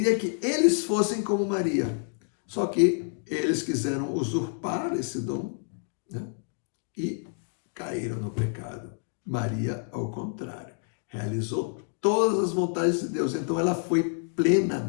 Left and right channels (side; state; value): right; silent; 59 dB below the other